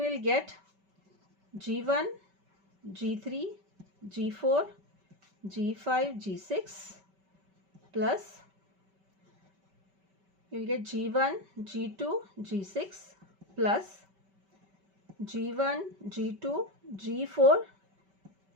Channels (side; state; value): left; late; 5.2 ms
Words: get G1, G3, G4, G5, G6 plus you will get G1, G2, G6 plus G1, G2, G4,